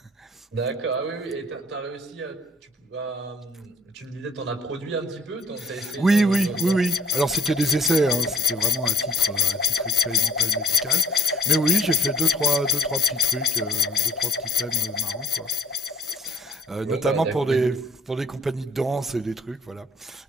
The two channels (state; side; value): normal; both; correlation 0.60